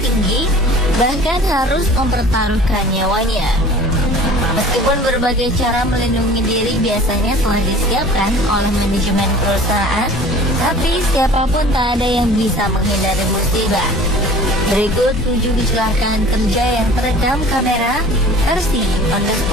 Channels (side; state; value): both; normal; correlation 0.45